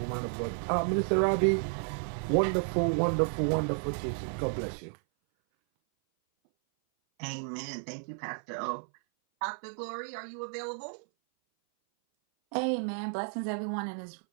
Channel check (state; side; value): silent; left; 57 dB below the other